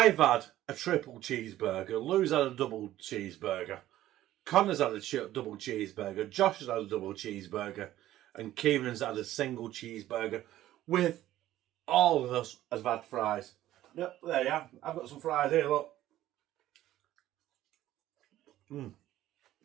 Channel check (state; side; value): quieter; left; 14.0 dB